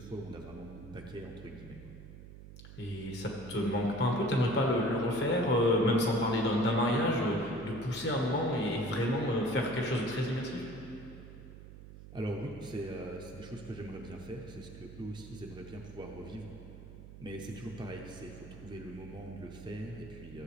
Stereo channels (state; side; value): noise; right; hum, 15 dB below the sound